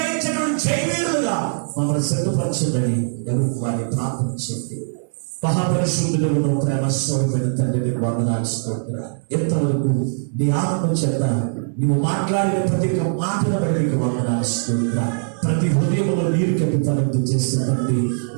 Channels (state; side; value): silent; left; digital silence